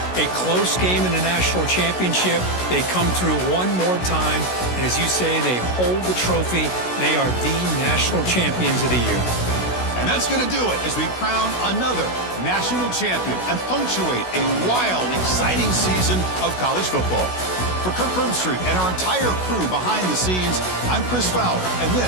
a close game in a national championship. They come through one more time. And as you say, they hold the trophy. They are the national champions of the year. And that's going to do it as we crown another national champion and punctuate a wild, exciting season of college football. For Kirk Herbstreit and our entire crew behind the scenes, I'm Chris Fowler, and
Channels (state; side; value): late; right; 16 ms